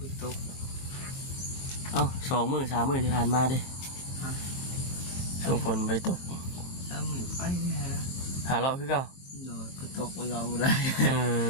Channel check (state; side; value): late; right; 23 ms